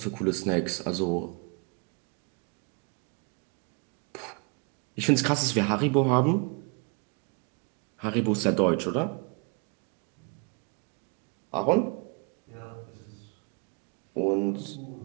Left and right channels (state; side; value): quieter; left; 34.7 dB